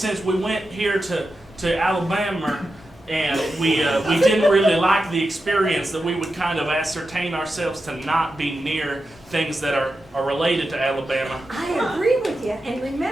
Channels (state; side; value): normal; both; correlation 0.90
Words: we went here to Alabama and we didn't really like the experience, that we would kind of ascertain ourselves to not be near things that are related to Alabama. I agree with you. And